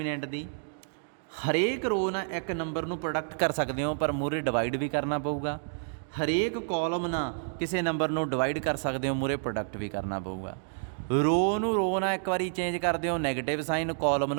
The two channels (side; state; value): left; silent; digital silence